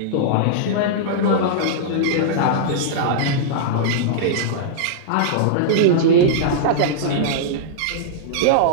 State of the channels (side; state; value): both; different; correlation -0.02